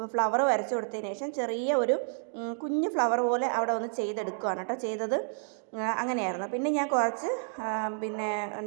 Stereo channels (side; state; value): left; silent; 58 dB below the other